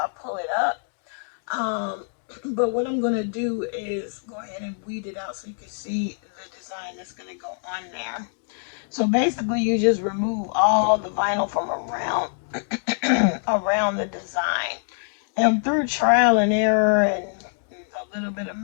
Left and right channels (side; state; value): right; silent; digital silence